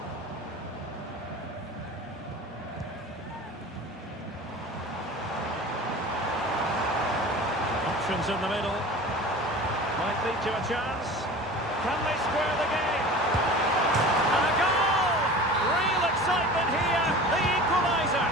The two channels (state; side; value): normal; both; correlation 0.38